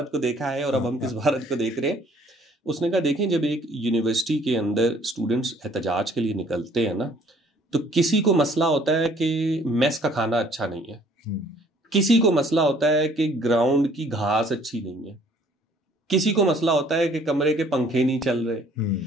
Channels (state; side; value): normal; both; correlation 0.59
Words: को देखा है और अब हम किस भारत को देख रहे हैं। उसने कहा देखें, जब एक यूनिवर्सिटी के अंदर स्टूडेंट्स एहतजाज के लिए निकलते हैं ना, तो किसी को मसला होता है कि मेस का खाना अच्छा नहीं है, किसी को मसला होता है कि ग्राउंड की घास अच्छी नहीं है, किसी को मसला होता है कि कमरे के पंखे नहीं चल रहे।